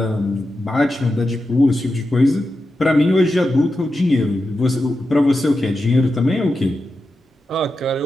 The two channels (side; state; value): both; normal; correlation 0.90